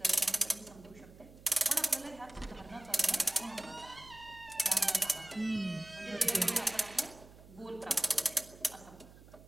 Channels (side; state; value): right; noise; hum, 21 dB below the sound